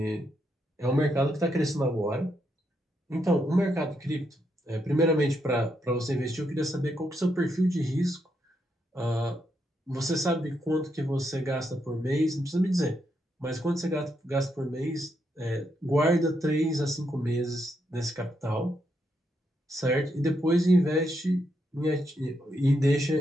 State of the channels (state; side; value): normal; both; correlation 0.80